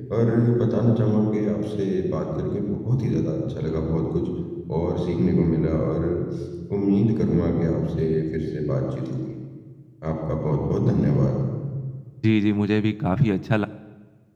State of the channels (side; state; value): both; identical; correlation 1.00